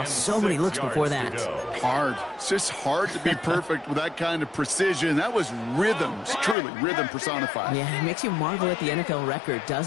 so many looks before that. Hard. It's just hard to be perfect with that kind of precision. That was rhythm. It's truly rhythm personified. Yeah, it makes you marvel at the NFL record,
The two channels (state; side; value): drops out; right; at 6.6 s